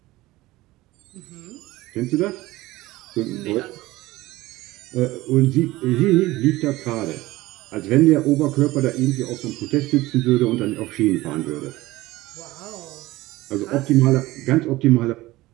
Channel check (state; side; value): quieter; left; 18.5 dB